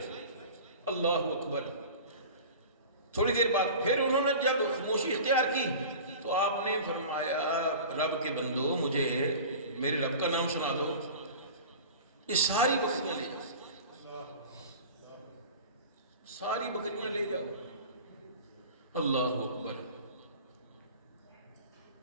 اللہ اکبر۔ تھوڑی دیر بعد پھر انہوں نے جب خاموشی اختیار کی تو آپ نے فرمایا رب کے بندو مجھے میرے رب کا نام سنا دو، یہ ساری بکریاں لے جاؤ، ساری بکریاں لے جاؤ۔ اللہ اکبر۔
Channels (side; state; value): both; inverted; correlation -0.38